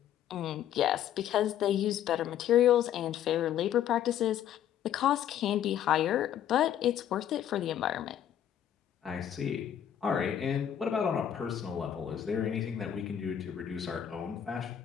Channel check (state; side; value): quieter; right; 10.2 dB